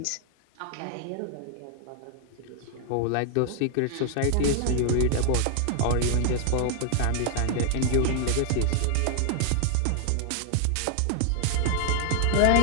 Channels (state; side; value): different; both; correlation 0.00